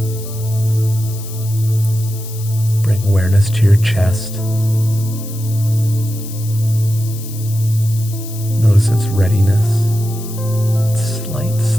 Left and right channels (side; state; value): left; noise; hiss, 15 dB below the sound